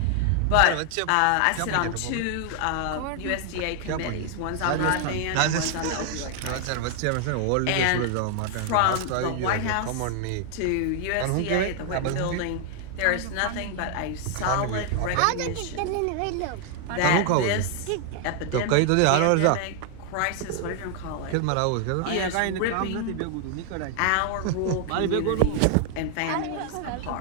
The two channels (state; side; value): different; both; correlation 0.00